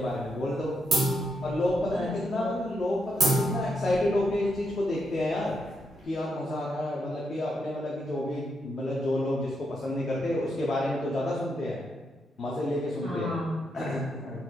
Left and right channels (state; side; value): normal; both; correlation 0.80